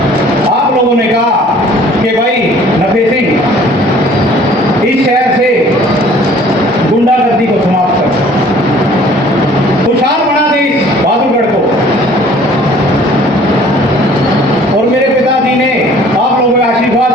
आप लोगों ने कहा कि भाई नफे सिंह इस शहर से गुंडागर्दी को समाप्त कर, खुशहाल बना दे इस बहादुरगढ़ को। और मेरे पिताजी ने आप लोगों के आशीर्वाद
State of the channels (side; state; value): both; normal; correlation 0.53